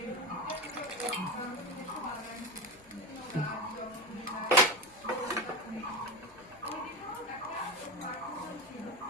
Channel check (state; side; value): normal; both; correlation 0.20